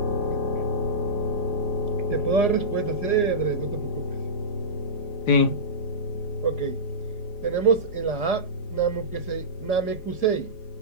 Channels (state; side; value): late; right; 4.9 ms